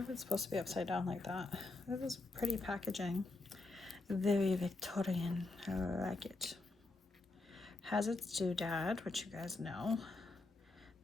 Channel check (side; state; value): right; quieter; 3.2 dB